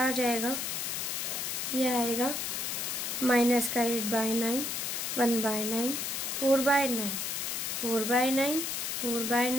आ जाएगा, ये आएगा माइनस का 8/9 1/9 4/9 4/9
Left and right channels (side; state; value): left; noise; hiss, 2 dB below the sound